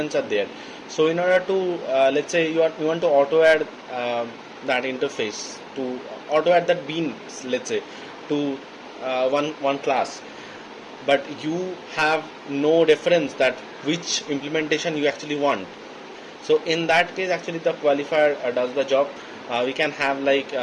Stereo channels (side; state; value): both; identical; correlation 1.00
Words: are there. So in order to let's say you want to auto add that interface, to auto add that bean, let's say, to one class, but you have no reference that which implementation you actually want. So in that case, actually the qualifier does the job. We can have like